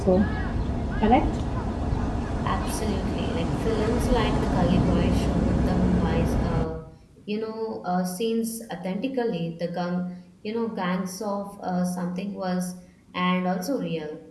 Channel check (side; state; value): both; identical; correlation 1.00